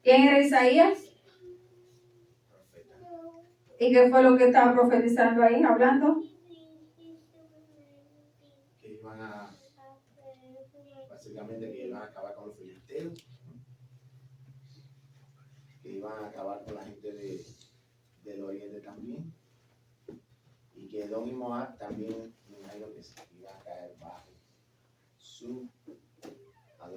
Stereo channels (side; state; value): both; identical; correlation 1.00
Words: ¿Quién era Isaías? ¿Y qué fue lo que estaba profetizando ahí, hablando? Que iban a, básicamente que iban a acabar con los filisteos, que iban a acabar con la gente del oriente también, y que Edom y Moab también, me imagino que se iban a caer bajo su